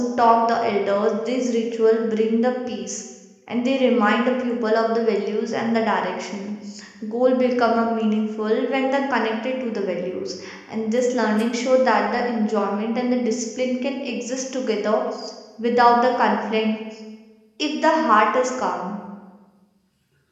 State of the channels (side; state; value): both; identical; correlation 1.00